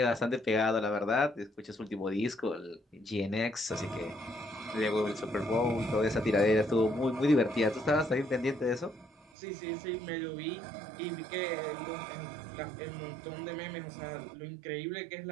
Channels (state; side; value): drops out; left; at 9.3 s